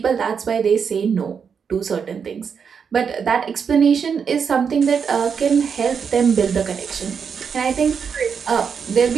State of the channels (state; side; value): quieter; left; 6.5 dB